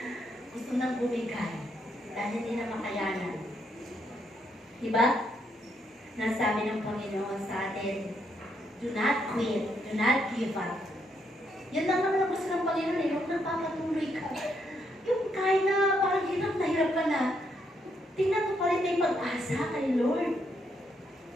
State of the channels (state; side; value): normal; both; correlation 0.76